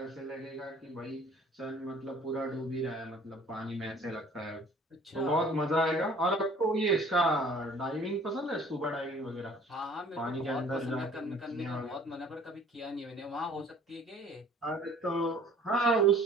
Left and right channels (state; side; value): normal; both; correlation 0.52